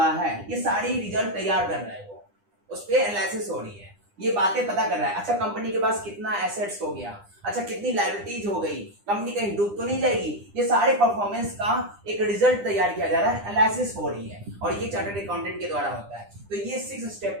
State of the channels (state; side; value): late; left; 9.9 ms